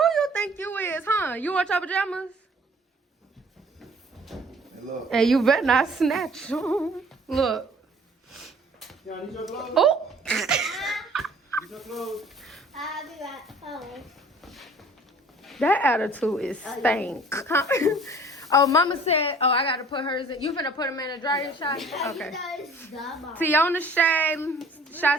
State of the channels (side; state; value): both; normal; correlation 0.52